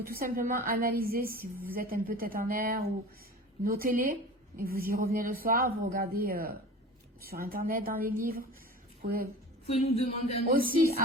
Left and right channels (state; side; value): normal; both; correlation 0.37